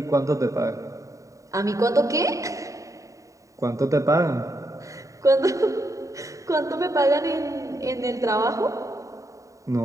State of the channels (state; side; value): late; left; 0.16 ms